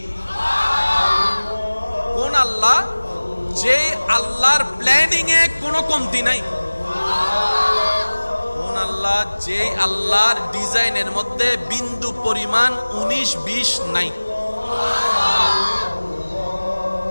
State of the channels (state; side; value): inverted; both; correlation -1.00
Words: কোন আল্লাহ? যে আল্লাহর প্ল্যানিং এ কোনো কমতি নাই। কোন আল্লাহ? যে আল্লাহর ডিজাইনের মধ্যে বিন্দু পরিমাণ 19-20 নাই।